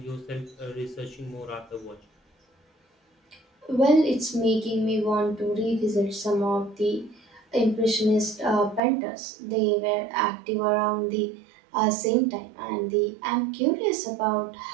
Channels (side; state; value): left; drops out; at 8.8 s